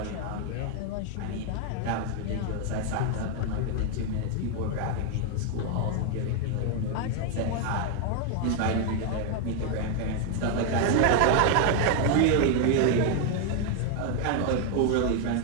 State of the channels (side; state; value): both; different; correlation 0.00